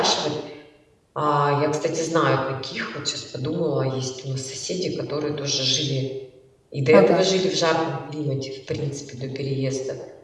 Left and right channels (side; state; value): both; identical; correlation 1.00